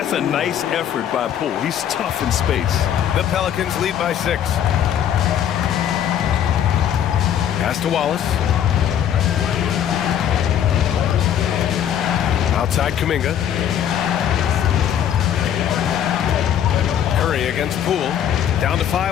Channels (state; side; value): quieter; right; 9.7 dB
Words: a nice effort by Poole. He's tough in space. The Pelicans lead by 6. Pass to Wallace. Outside Kuminga. Curry against Poole. Down to